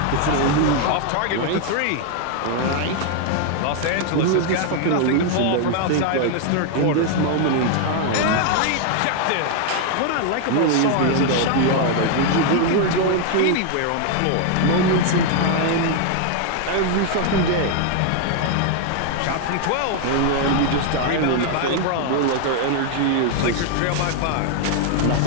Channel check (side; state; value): both; different; correlation 0.00